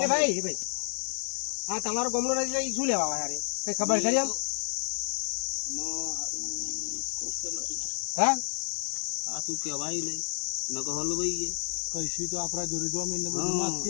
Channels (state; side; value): silent; right; 58 dB below the other